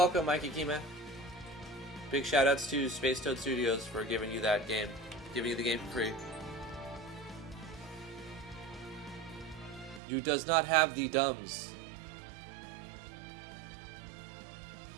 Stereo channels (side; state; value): left; drops out; at 10.0 s